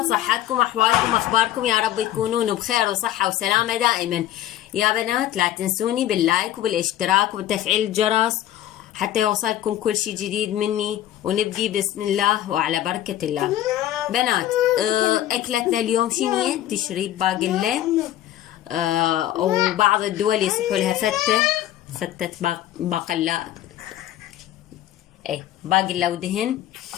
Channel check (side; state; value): right; quieter; 12.8 dB